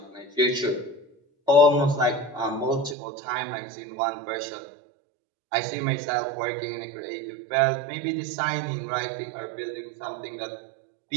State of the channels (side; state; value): left; drops out; at 3.0 s